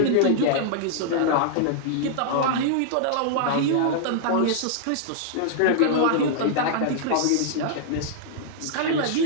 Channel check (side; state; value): both; different; correlation -0.01